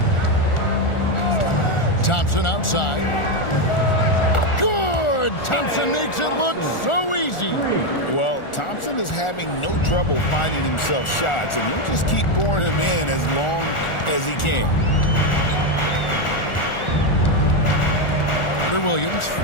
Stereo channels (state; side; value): late; right; 1.4 ms